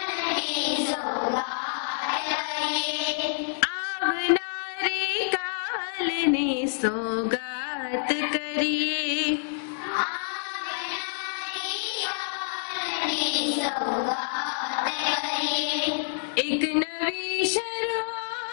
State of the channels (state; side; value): silent; right; digital silence